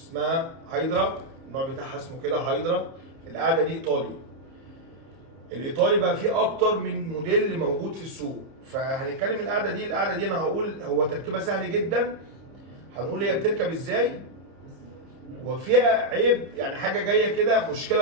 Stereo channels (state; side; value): late; left; 30 ms